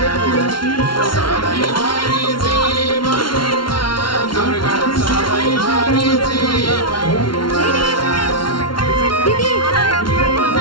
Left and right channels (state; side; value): late; right; 0.73 ms